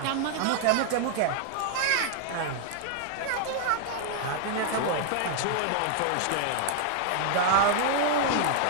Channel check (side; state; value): both; different; correlation 0.00